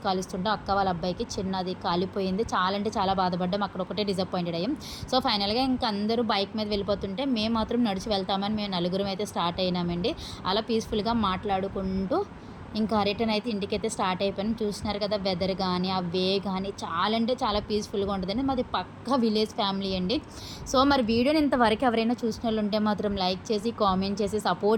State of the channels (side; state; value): both; identical; correlation 1.00